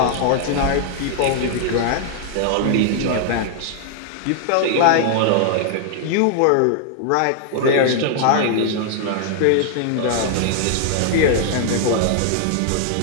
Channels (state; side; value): different; both; correlation 0.00